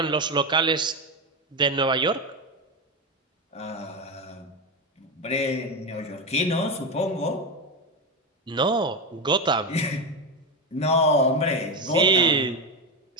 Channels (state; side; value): normal; both; correlation 0.13